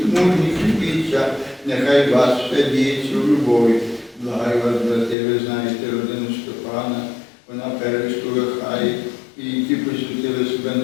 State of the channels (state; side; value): drops out; right; at 5.2 s